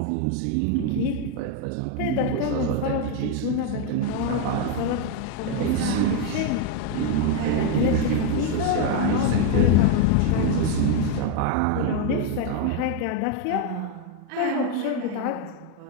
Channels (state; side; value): different; both; correlation 0.01